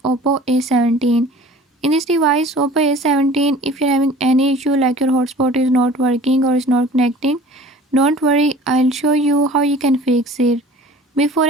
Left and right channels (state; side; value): normal; both; correlation 0.45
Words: Oppo A17. In this device Oppo A17, if you're having any issue like your hotspot is not working or is not connecting, don't worry, I'll show you how you can fix it. Before